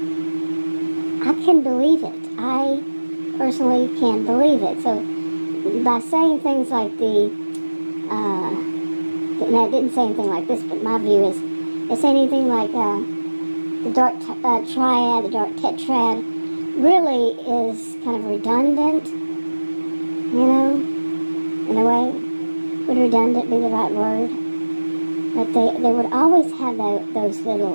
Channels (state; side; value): inverted; both; correlation -1.00